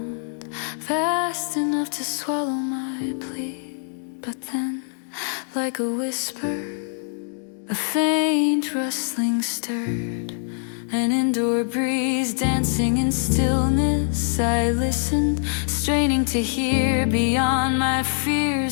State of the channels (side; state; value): right; silent; 63 dB below the other